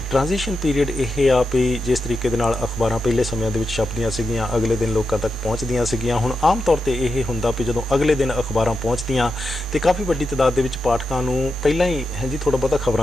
ਟ੍ਰਾਂਜੀਸ਼ਨ ਪੀਰੀਅਡ ਇਹ ਆ ਵੀ ਜਿਸ ਤਰੀਕੇ ਦੇ ਨਾਲ ਅਖਬਾਰਾਂ ਪਹਿਲੇ ਸਮਿਆਂ ਦੇ ਵਿੱਚ ਛਪਦੀਆਂ ਸੀਗੀਆਂ, ਅਗਲੇ ਦਿਨ ਲੋਕਾਂ ਤੱਕ ਪਹੁੰਚਦੀਆਂ ਸੀਗੀਆਂ, ਹੁਣ ਆਮ ਤੌਰ ਤੇ ਇਹ ਹੁੰਦਾ ਵੀ ਜਦੋਂ ਅਗਲੇ ਦਿਨ ਅਖਬਾਰਾਂ ਪਹੁੰਚਦੀਆਂ ਤੇ ਕਾਫੀ ਵੱਡੀ ਤਾਦਾਦ ਦੇ ਵਿੱਚ ਪਾਠਕਾਂ ਨੂੰ ਪਹਿਲਾਂ ਹੀ ਜੀ ਥੋੜਾ ਬਹੁਤਾ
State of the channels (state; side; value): normal; both; correlation 0.87